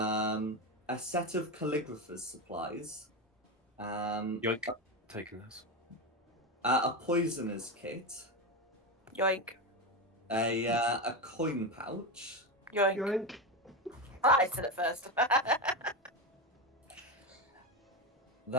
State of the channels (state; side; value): normal; both; correlation 0.15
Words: set of calligrapher's supplies, Yoink. Taking this. a poisoner's kit, Yoink. a coin pouch, Yoink. yoink. I said it first.